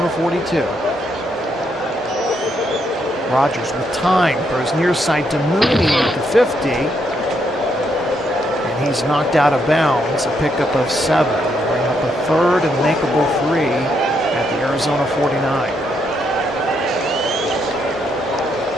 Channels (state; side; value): normal; both; correlation 0.76